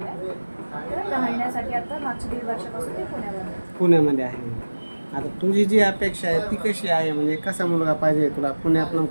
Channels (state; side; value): inverted; both; correlation -1.00